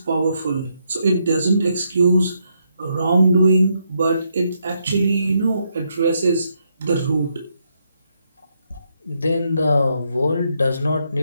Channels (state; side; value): inverted; both; correlation -0.78